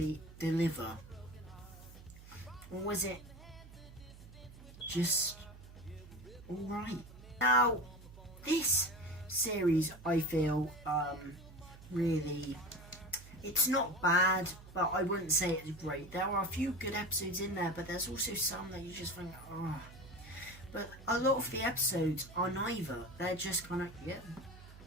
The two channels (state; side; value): noise; right; hum, 18 dB below the sound